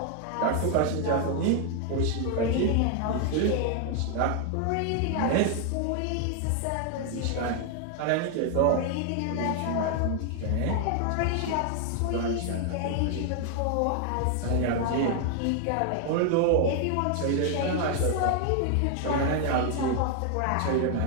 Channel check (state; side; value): different; both; correlation 0.00